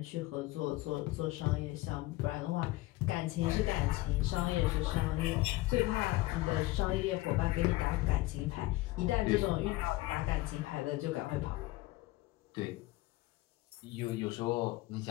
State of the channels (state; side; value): quieter; right; 18.8 dB